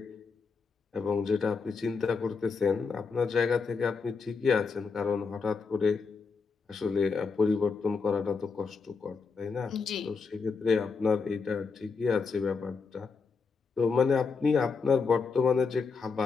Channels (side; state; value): right; quieter; 4.9 dB